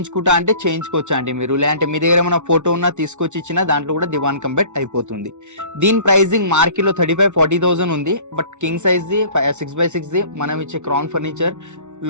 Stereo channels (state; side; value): late; left; 0.83 ms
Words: అంటే చేయించుకోవచ్చు అండి మీరు. లేదంటే మీ దగ్గర ఏమైనా ఫోటో ఉన్నా తీసుకొచ్చి ఇచ్చినా దాంట్లో కూడా దివాన్ కంబెడ్ అయిపోతుంది. దీని ప్రైజింగ్ మార్కెట్ లో 35,000-40,000 ఉంది. But king size the 6x6 the మనం ఇచ్చే క్రౌన్ ఫర్నిచర్